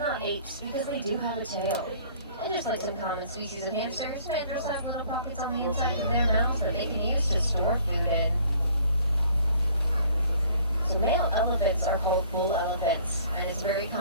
apes, because they do have a tail. And just like some common species of hamsters, mandrills have little pockets on the inside of their mouths that they can use to store food in. So male elephants are called bull elephants, and it's very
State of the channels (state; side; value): inverted; both; correlation -0.55